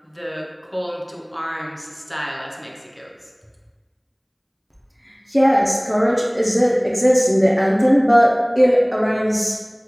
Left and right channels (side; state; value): both; identical; correlation 1.00